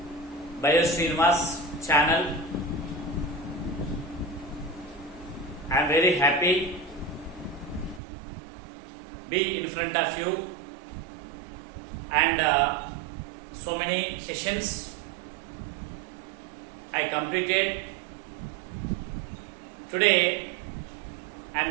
Bio Srinivas channel. I am very happy be in front of you and so many sessions I completed. Today I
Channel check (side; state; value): left; drops out; at 8.0 s